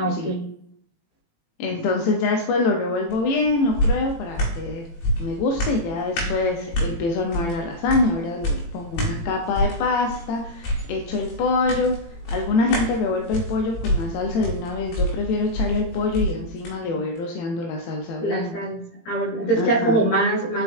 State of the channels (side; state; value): right; late; 18 ms